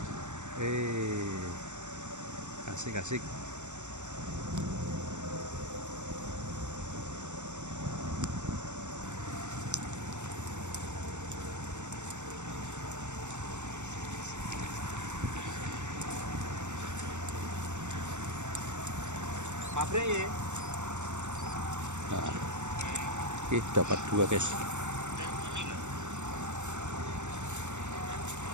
Asik-asik. Pabrik ya. Nah, dapat dua guys.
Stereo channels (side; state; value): left; late; 0.84 ms